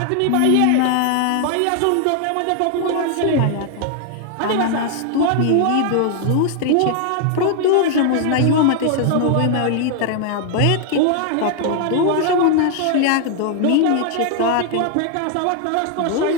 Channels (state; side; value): different; both; correlation 0.00